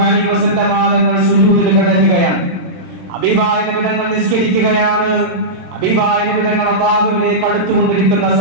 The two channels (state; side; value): late; left; 27 ms